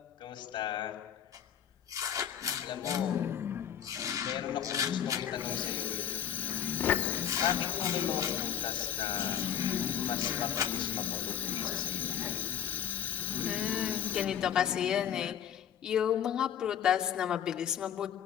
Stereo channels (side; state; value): right; quieter; 9.5 dB